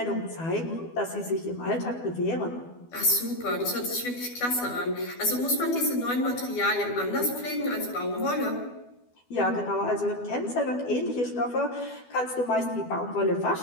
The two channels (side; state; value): right; late; 12 ms